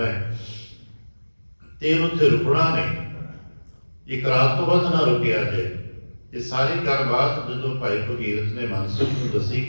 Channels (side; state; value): both; inverted; correlation -1.00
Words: ਤੇ ਉੱਥੇ ਰੁਕਣਾ ਨਹੀਂ, ਇੱਕ ਰਾਤ ਤੋਂ ਵੱਧ ਨਾ ਰੁਕਿਆ ਜੇ। ਇਹ ਸਾਰੀ ਗੱਲਬਾਤ ਜਦੋਂ ਭਾਈ ਭਗੀਰਥ ਨੇ ਮਨਸੁਖ ਨੂੰ ਦੱਸੀ